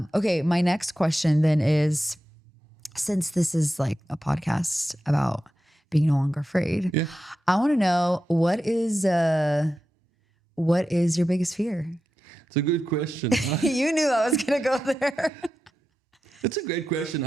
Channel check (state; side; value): normal; both; correlation 0.90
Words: okay, my next question then is, since this is like a podcast about being no longer afraid, I want to know what is your biggest fear? It's a good question. You knew I was going to go there. It's a great question.